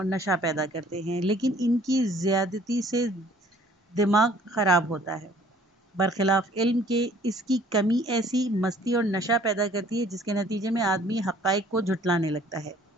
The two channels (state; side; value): normal; both; correlation 0.56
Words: نشہ پیدا کرتے ہیں، لیکن ان کی زیادتی سے دماغ خراب ہوتا ہے۔ برخلاف علم کے اس کی کمی ایسی مستی اور نشہ پیدا کرتی ہے جس کے نتیجے میں آدمی حقائق کو جھٹلانے لگتا ہے۔